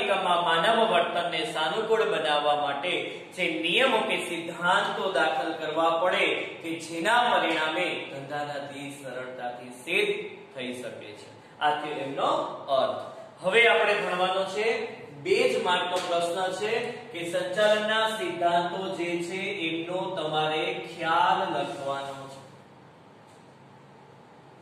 એકમમાં માનવ વર્તનને સાનુકૂળ બનાવવા માટે જે નિયમો કે સિદ્ધાંતો દાખલ કરવા પડે કે જેના પરિણામે ધંધાના ધ્યેય સરળતાથી સિદ્ધ થઈ શકે છે. આ થયો એમનો અર્થ. હવે આપણે ભણવાનો છે 2 જ માર્કનો પ્રશ્ન છે કે સંચાલનના સિદ્ધાંતો જે છે એમનો તમારે ખ્યાલ લખવાનો છે.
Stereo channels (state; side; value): identical; both; correlation 1.00